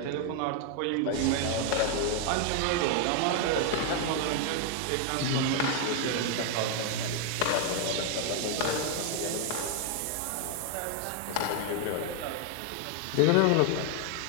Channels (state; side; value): different; both; correlation 0.00